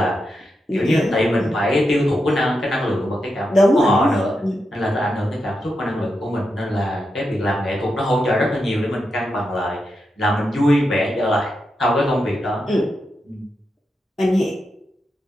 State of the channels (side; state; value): both; normal; correlation 0.86